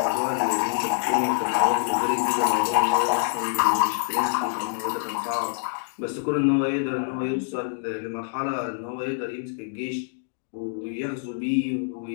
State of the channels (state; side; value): silent; right; digital silence